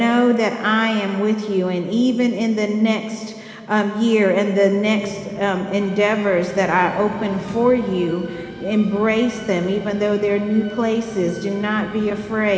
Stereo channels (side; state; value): both; identical; correlation 1.00